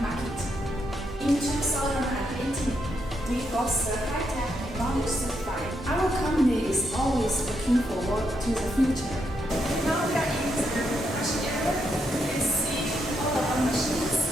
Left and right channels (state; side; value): normal; both; correlation 0.79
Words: market. In 2018, we got the high-tech technology certified. Our company is always looking forward to the future. Now we are in the production area. You can see all of our machines.